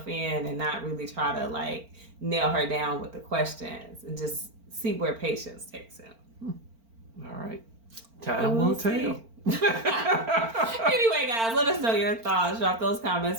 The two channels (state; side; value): late; left; 4.4 ms